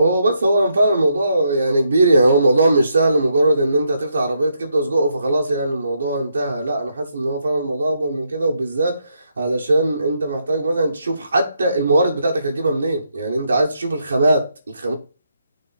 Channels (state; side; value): inverted; both; correlation -0.78